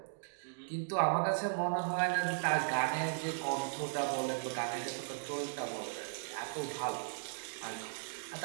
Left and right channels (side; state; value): left; silent; digital silence